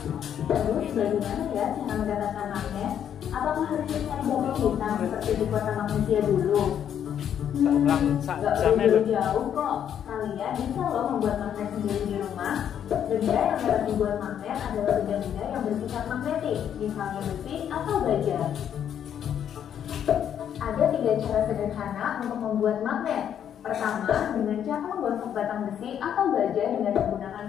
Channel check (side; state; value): right; quieter; 9.3 dB